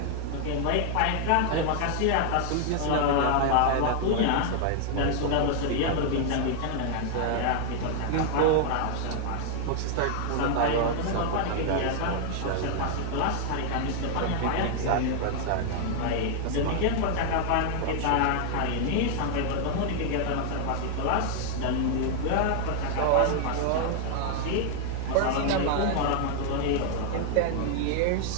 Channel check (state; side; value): different; both; correlation 0.00